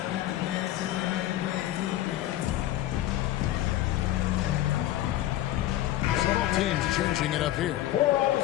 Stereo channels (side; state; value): right; quieter; 14.1 dB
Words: Teams changing it up here.